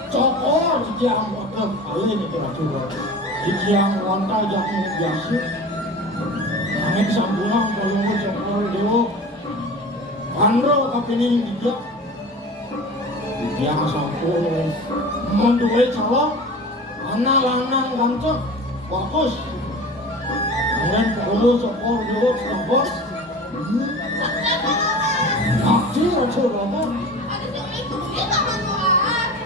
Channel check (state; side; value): normal; both; correlation 0.36